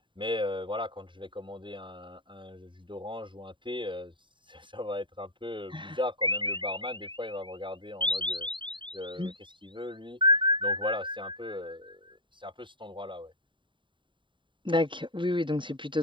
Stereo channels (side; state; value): left; late; 0.23 ms